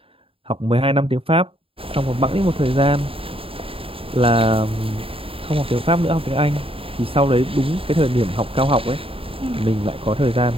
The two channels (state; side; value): late; left; 0.27 ms